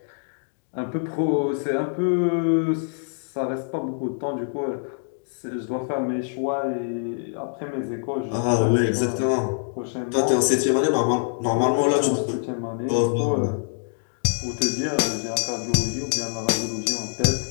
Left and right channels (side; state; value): right; silent; digital silence